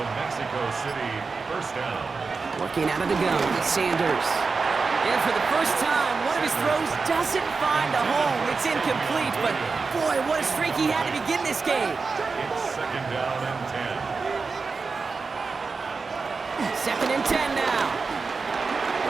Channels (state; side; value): quieter; left; 4.5 dB